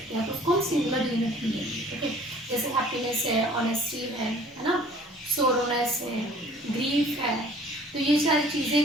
हैं, तो उसको हम सिंगुलर यूनिट ही लेंगे, ओके। जैसे हैप्पीनेस है, ऑनेस्टी है ना, सोरोनेस है, ग्रीफ है, तो ये सारी चीजें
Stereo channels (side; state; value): both; normal; correlation 0.52